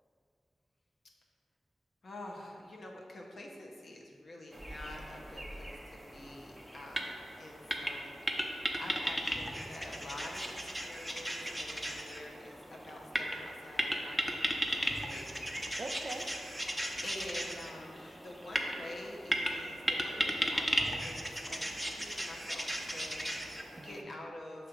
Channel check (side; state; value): both; normal; correlation 0.93